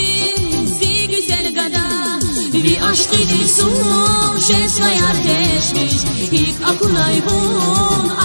zi güzel gada Bir aşk ediyorsun cezveye ateşmiş İlk akunay bun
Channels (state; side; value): inverted; both; correlation -1.00